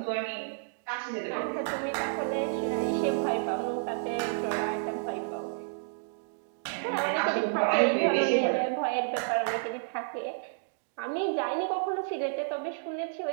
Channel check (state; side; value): silent; left; digital silence